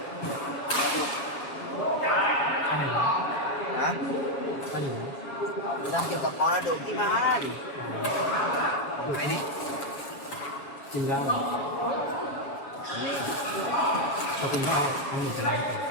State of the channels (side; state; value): right; late; 7.2 ms